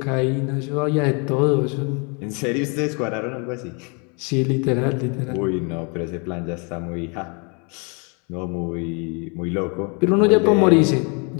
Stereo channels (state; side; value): quieter; right; 34.7 dB